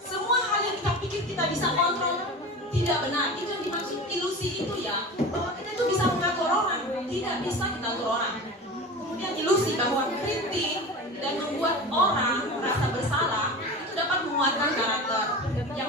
semua hal yang kita pikir kita bisa kontrol tidak benar. Itu yang dimaksud ilusi itu ya. Bahwa kita itu bisa mengatur orang, tidak bisa kita atur orang. Kemudian ilusi bahwa kritik dan membuat orang merasa bersalah itu dapat menguatkan karakter.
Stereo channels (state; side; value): normal; both; correlation 0.32